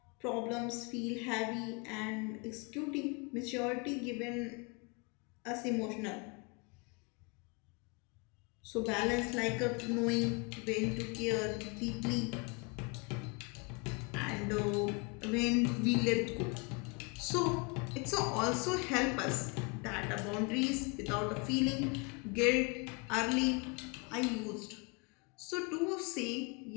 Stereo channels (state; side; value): quieter; right; 31.5 dB